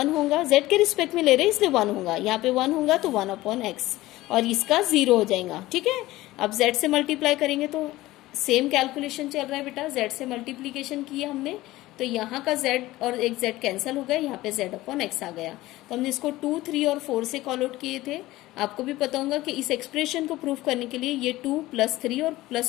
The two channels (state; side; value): quieter; right; 17.5 dB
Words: होगा, z के रिस्पेक्ट में ले रहे हैं इसलिए 1 होगा, यहाँ पे 1 होगा तो 1/x और इसका 0 हो जाएगा, ठीक है। अब z से मल्टीप्लाई करेंगे तो सेम कैलकुलेशन चल रहा है बेटा, z से मल्टीप्लीकेशन किए हमने तो यहाँ का z और एक z कैंसिल हो गया, यहाँ पे z अपॉन x आ गया। तो हमने इसको 2, 3 और 4 से कॉल आउट किए थे। आपको भी पता होगा कि इस एक्सप्रेशन को प्रूफ करने के लिए ये 2 + 3 और